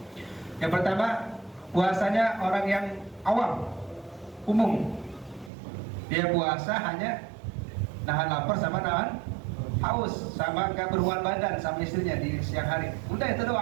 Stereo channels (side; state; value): left; drops out; at 5.5 s